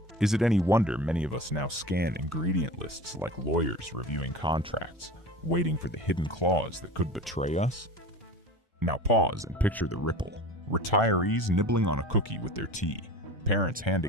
Is it any wonder many of us now scan ingredient lists like lawyers reviewing contracts, waiting for the hidden claws that could betray us? Now pause and picture the ripple. Retirees nibbling on a cookie with their tea, parents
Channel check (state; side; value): normal; both; correlation 0.35